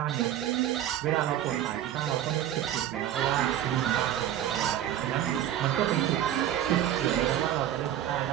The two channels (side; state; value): left; quieter; 11.7 dB